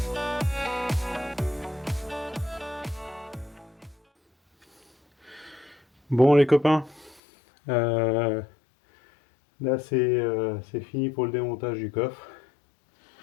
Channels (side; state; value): right; drops out; at 7.2 s